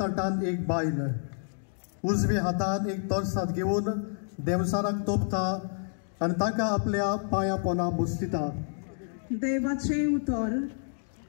एक बायल उजव्या हातान एक तोरसाद घेऊन देवसाराक तोपता आणि ताका आपल्या पाया पोना बुसतिता। देवाचे उतर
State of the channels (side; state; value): right; silent; digital silence